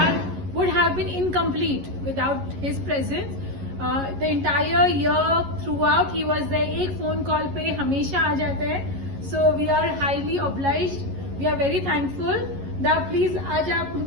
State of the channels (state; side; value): late; left; 11 ms